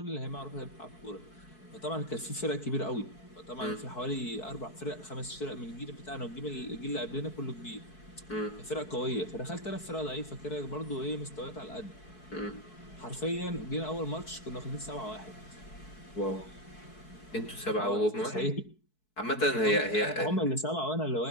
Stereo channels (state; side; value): late; right; 4.6 ms